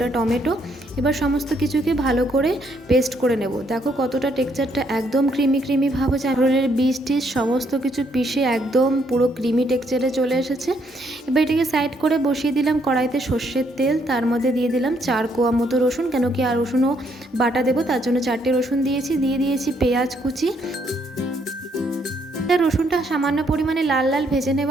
টমেটো। এবার সমস্ত কিছুকে ভালো করে পেস্ট করে নেব। দেখো কতটা টেক্সচারটা একদম ক্রিমি ভাব হচ্ছে। কাঁকরোলের বীজ টিজ সমস্ত কিছু পিষে একদম পুরো ক্রিমি টেক্সচারে চলে এসেছে। এবার এটাকে সাইড করে বসিয়ে দিলাম কড়াইতে সর্ষের তেল, তার মধ্যে দিয়ে দিলাম 4 কোয়া মতো রসুন, কেন কি আর রসুনও বাটা দেবো, তার জন্য 4টে রসুন দিয়েছি। দিয়ে দিয়েছি পেঁয়াজ কুচি। রসুনটা সামান্য পরিমাণে লাল লাল ভেজে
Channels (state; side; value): normal; both; correlation 0.71